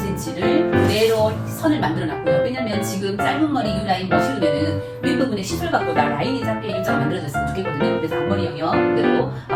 그대로 선을 만들어놨고요. 왜냐면 지금 짧은 머리 뉴라인 머쉬룸에는 윗부분에 시술각보다 라인이 작게 일자가 만들어졌으면 좋겠거든요. 그래서 앞머리 영역 그대로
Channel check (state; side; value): identical; both; correlation 1.00